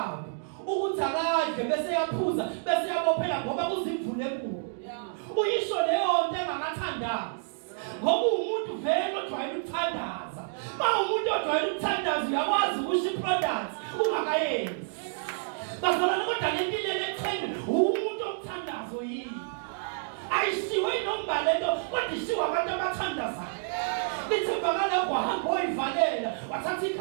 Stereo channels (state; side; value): silent; left; digital silence